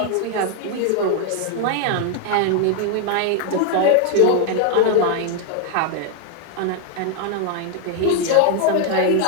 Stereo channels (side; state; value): both; different; correlation 0.00